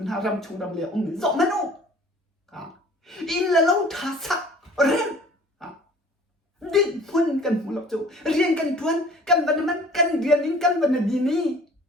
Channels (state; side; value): normal; both; correlation 0.49